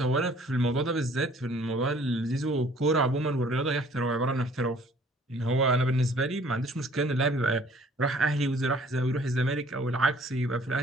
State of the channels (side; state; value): both; normal; correlation 0.56